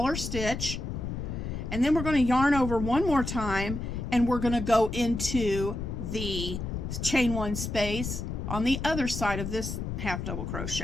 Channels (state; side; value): noise; left; rumble, 5 dB below the sound